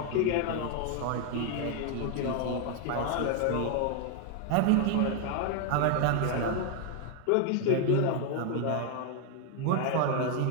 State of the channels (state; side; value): different; both; correlation 0.00